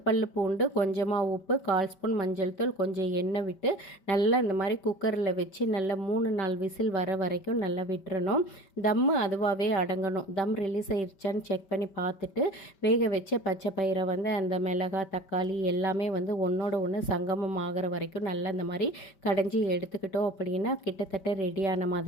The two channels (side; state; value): right; late; 5.2 ms